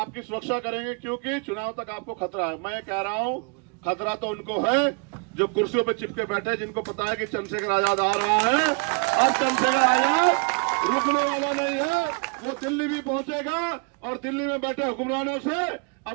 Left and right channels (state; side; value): quieter; left; 35.6 dB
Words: सुरक्षा करेंगे, क्योंकि चुनाव तक आपको खतरा है। मैं कह रहा हूं, खतरा तो उनको है जो कुर्सियों पर चिपके बैठे, जिनको पता है कि चंद्रशेखर आजाद आ रहा है। अब चंद्रशेखर आजाद रुकने वाला नहीं है, वो दिल्ली भी पहुंचेगा और दिल्ली में बैठे हुक्मरानों से